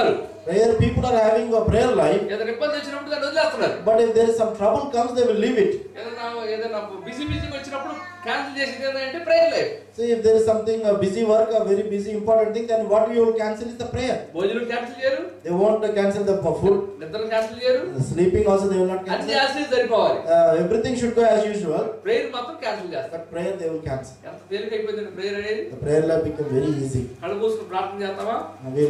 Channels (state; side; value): identical; both; correlation 1.00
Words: Prayer people are having a prayer life, ఏదైనా ఇబ్బంది వచ్చినప్పుడు దాన్ని వదిలేస్తున్నారు. but if there is some trouble comes, they will leave it. ఏదైనా బిజీ వచ్చినప్పుడు క్యాన్సిల్ చేసేది ఏంటంటే prayer life. So if there is something, a busy work, a very busy important thing, then what you will cancel is the prayer. భోజనం cancel చేయరు, They won't cancel the food. నిద్ర cancel చేయరు, Sleeping also they will not అన్ని cancel. చేస్తే సరిపోవాలి. Everything should go as usual, prayer మాత్రం cancel చేస్తారు. but prayer they will cancel. ఎంత తేలిక అయిపోయింది ప్రేయర్ అనేది. The prayer life become very easy. కళ్ళు మూసుకుని ప్రార్థన చేస్తామా, And we